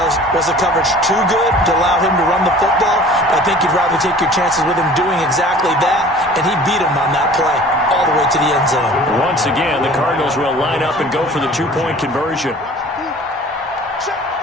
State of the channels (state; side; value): normal; both; correlation 0.46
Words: was the coverage too good to allow him to run the football? I think you'd rather take your chances with him doing exactly that, and he beat him on that play all the way to the end zone. Once again, the Cardinals will line up and go for the 2-point conversion.